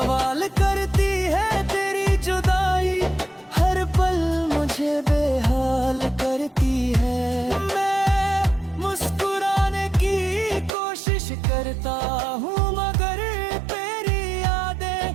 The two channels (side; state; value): left; drops out; at 10.7 s